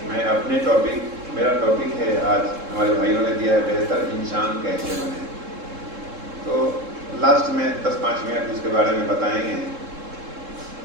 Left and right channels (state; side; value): late; left; 3.7 ms